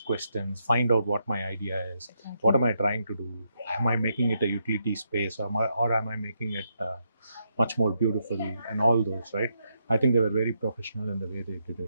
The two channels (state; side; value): inverted; both; correlation -0.80